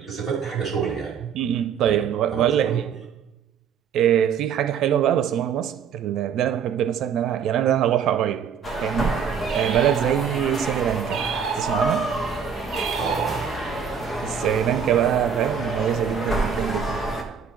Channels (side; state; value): left; quieter; 7.4 dB